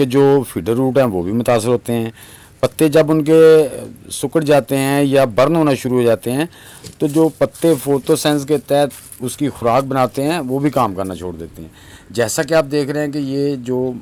जो फीडर रूट हैं वो भी मुतासर होते हैं। पत्ते जब उनके सिकुड़ जाते हैं या बर्न होना शुरू हो जाते हैं तो जो पत्ते फोटोसेंस के तहत उसकी खुराक बनाते हैं वो भी काम करना छोड़ देते हैं। जैसा कि आप देख रहे हैं कि ये जो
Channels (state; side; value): identical; both; correlation 1.00